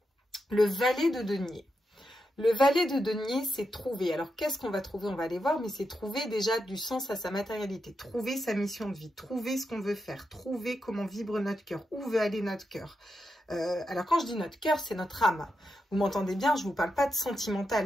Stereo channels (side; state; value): both; normal; correlation 0.86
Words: Le valet de denier. Le valet de denier, c'est trouver. Alors, qu'est-ce qu'on va trouver? On va aller voir, mais c'est trouver déjà du sens à sa matérialité. Trouver sa mission de vie. Trouver ce qu'on veut faire. Trouver comment vibre notre cœur. Où veut aller notre cœur. Alors, quand je dis notre cœur, c'est notre âme. Vous m'entendez bien, je vous parle pas de